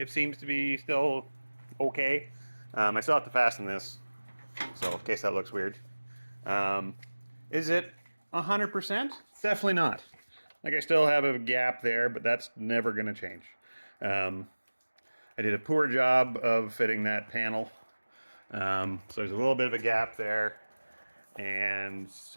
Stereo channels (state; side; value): inverted; both; correlation -1.00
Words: seems to be still okay. I still have to fasten this, so in case that looks weird. Is it 100%? Definitely not. Like, I still have a gap there, but that's never going to change. I did a poor job of fitting that panel. So there's a little bit of a gap there. And